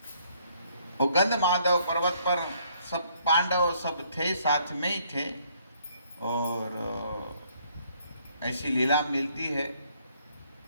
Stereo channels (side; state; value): both; inverted; correlation -0.66